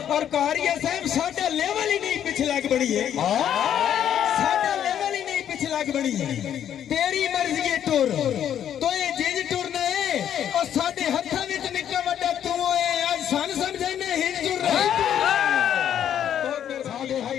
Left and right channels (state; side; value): quieter; right; 9.9 dB